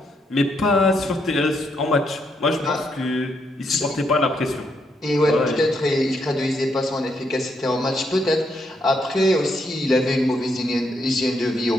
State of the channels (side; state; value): both; normal; correlation 0.77